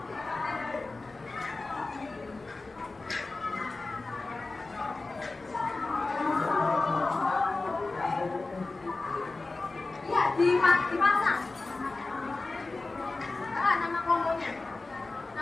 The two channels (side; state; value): right; quieter; 3.4 dB